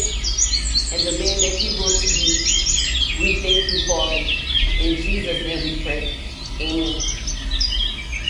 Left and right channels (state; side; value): identical; both; correlation 1.00